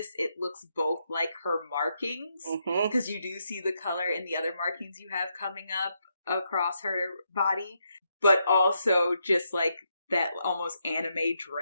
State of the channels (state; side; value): inverted; both; correlation -0.80